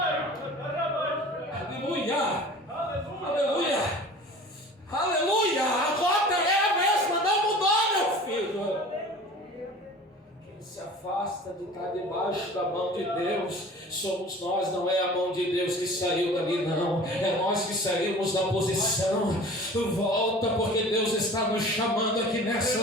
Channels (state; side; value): normal; both; correlation 0.42